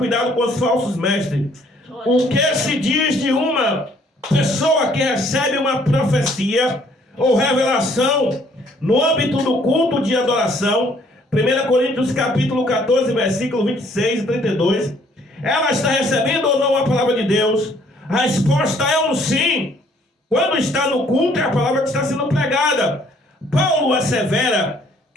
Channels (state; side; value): normal; both; correlation 0.62